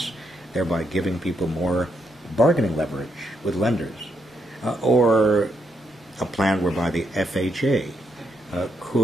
thereby giving people more bargaining leverage with lenders, or a plan whereby the FHA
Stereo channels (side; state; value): both; normal; correlation 0.78